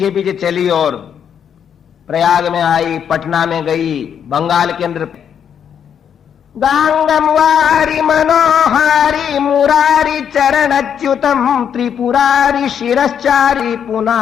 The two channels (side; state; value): right; quieter; 8.2 dB